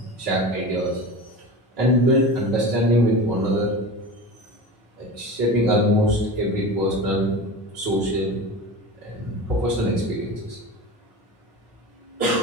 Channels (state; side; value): normal; both; correlation 0.30